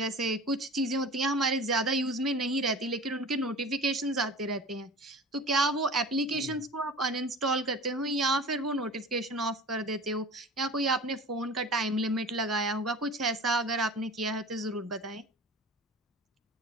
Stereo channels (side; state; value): both; normal; correlation 0.38